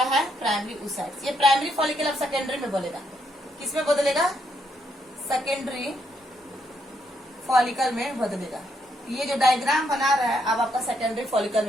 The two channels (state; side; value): normal; both; correlation 0.76